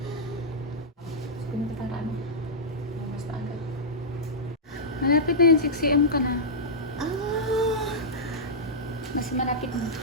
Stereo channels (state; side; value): normal; both; correlation -0.12